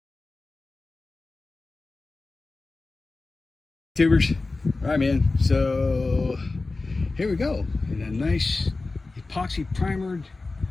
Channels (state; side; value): quieter; right; 3.5 dB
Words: Tubers, all right, man. So here we go, in a nice epoxy primered,